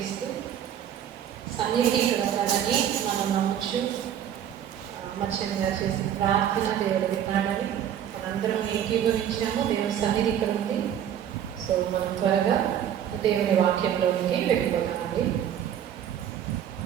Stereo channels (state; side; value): quieter; left; 9.8 dB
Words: సన్నిధి ఇక్కడ ఉన్నాడని మనం నమ్మచ్చు. మత్స్యంగా చేసిన ప్రార్థన దేవుడు విన్నాడని మనందరం ఏకీభవించాము. దేవుని సన్నిధి ఇక్కడ ఉంది. సో మనం త్వరగా దేవుని వాక్యంలోనికి వెళ్ళిపోతామండి.